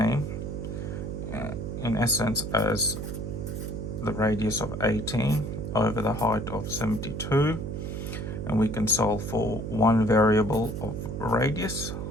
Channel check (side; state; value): right; noise; hum, 5 dB below the sound